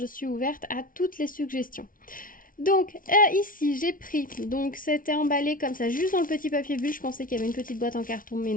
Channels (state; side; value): late; right; 0.40 ms